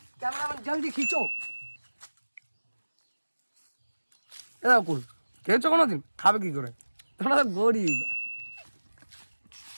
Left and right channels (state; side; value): inverted; both; correlation -1.00